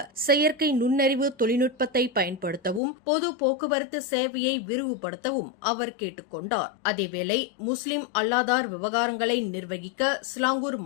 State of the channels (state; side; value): drops out; right; at 2.8 s